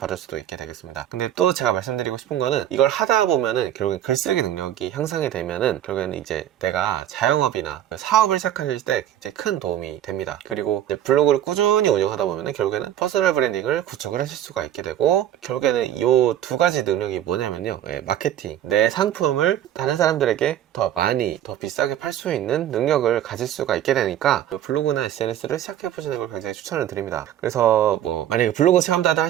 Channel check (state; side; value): quieter; left; 11.5 dB